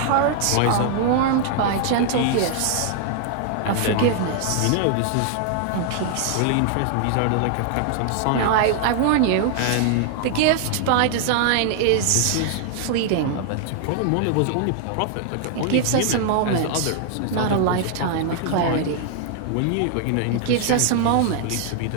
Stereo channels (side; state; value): both; different; correlation 0.00